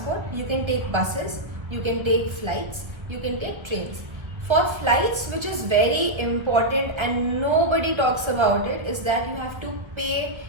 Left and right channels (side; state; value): left; late; 1.3 ms